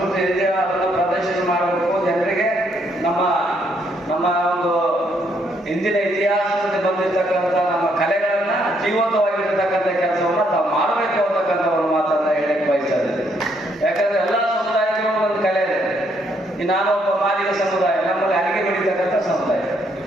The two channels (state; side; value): normal; both; correlation 0.72